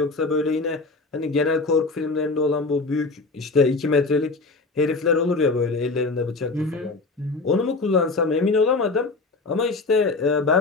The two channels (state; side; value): quieter; right; 3.6 dB